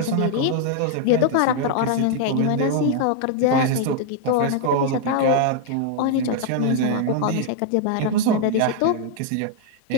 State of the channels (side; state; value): both; different; correlation 0.00